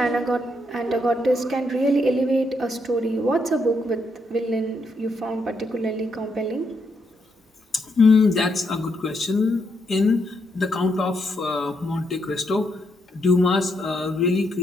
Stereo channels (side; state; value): both; normal; correlation 0.78